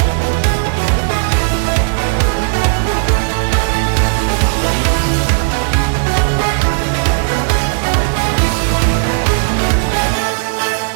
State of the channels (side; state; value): left; silent; digital silence